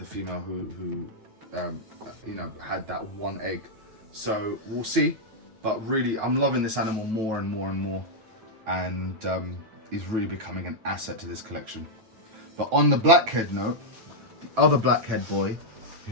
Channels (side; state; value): left; late; 9.2 ms